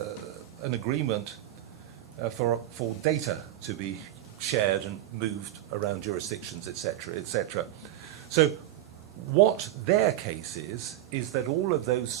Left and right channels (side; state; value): left; quieter; 13.5 dB